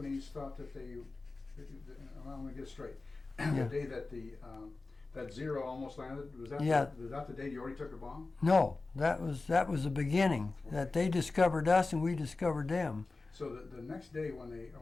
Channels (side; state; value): right; quieter; 3.6 dB